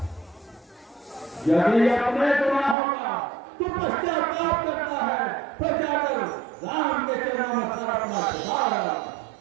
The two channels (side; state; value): left; drops out; at 2.8 s